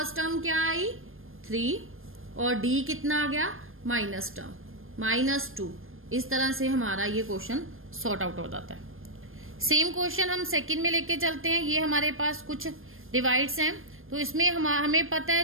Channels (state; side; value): late; left; 0.60 ms